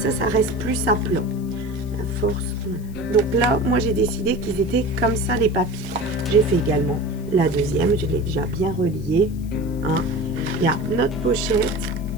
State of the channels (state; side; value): noise; left; hiss, 25 dB below the sound